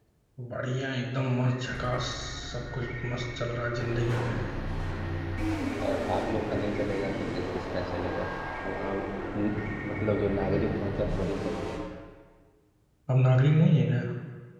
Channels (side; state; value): both; identical; correlation 1.00